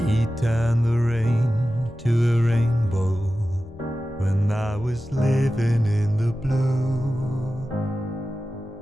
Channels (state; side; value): normal; both; correlation 0.94